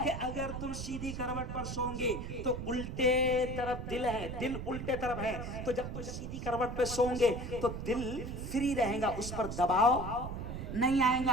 कि अगर तुम सीधी करवट पर सोओगे तो उल्टे तरफ दिल है, दिल उल्टे तरफ है, तो जब तुम सीधी करवट पर सोओगे तो दिल फ्री रहेगा, उस पर दबाव नहीं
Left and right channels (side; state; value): right; noise; rumble, 6 dB below the sound